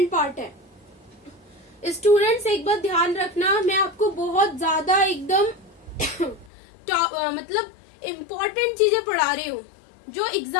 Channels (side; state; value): right; drops out; at 6.5 s